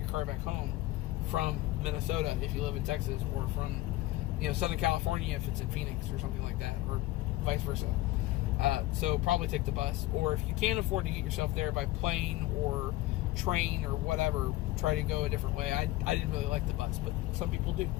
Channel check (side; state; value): right; quieter; 17.4 dB